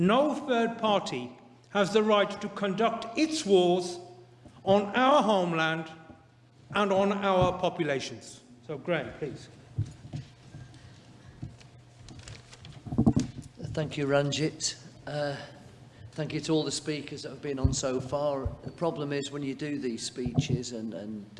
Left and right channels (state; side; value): identical; both; correlation 1.00